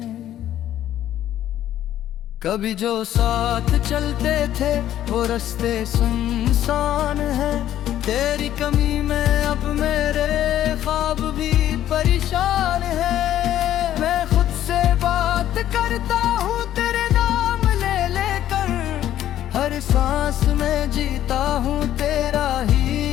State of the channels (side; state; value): right; quieter; 12.0 dB